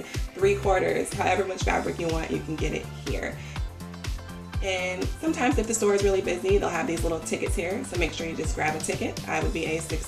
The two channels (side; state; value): both; identical; correlation 1.00